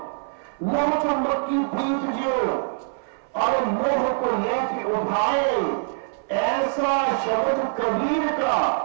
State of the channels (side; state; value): left; silent; 59 dB below the other